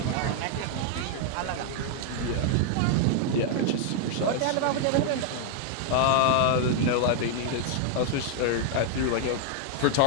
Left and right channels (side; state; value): both; different; correlation 0.00